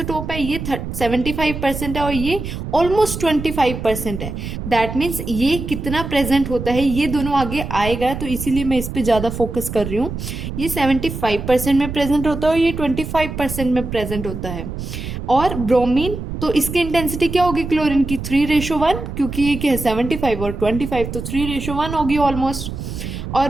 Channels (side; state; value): right; noise; rumble, 7 dB below the sound